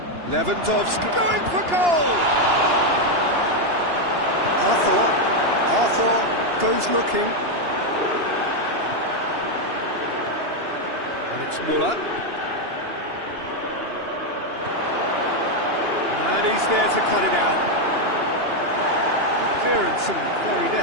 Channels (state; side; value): late; left; 2.9 ms